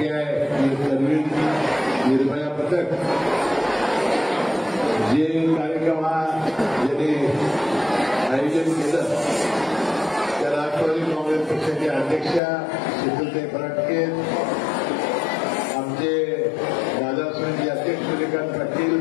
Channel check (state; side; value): drops out; right; at 12.4 s